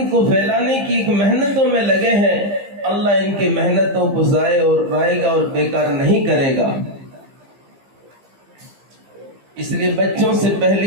کو پھیلانے کی ایک محنتوں میں لگے ہیں. اللہ ان کی محنتوں کو ضائع اور رائے گا اور بیکار نہیں کرے گا. اس لیے بچوں سے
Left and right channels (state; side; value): late; left; 15 ms